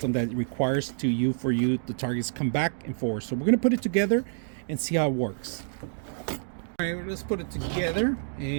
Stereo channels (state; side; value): silent; left; digital silence